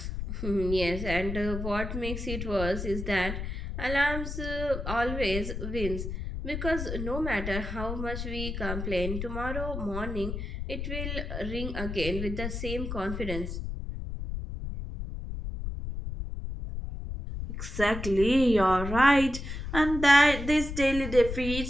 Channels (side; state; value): left; noise; rumble, 5 dB below the sound